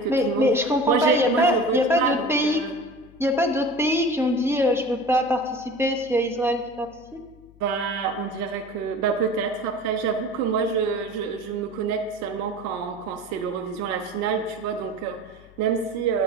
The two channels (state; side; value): noise; left; hum, 25 dB below the sound